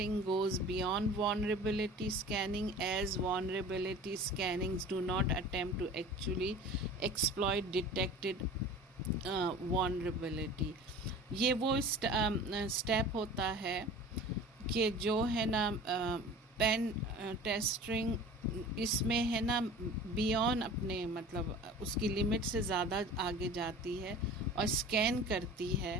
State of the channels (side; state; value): both; normal; correlation 0.40